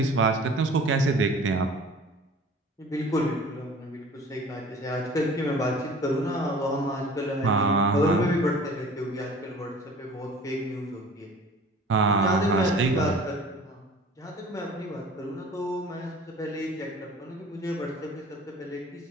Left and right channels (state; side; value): normal; both; correlation 0.46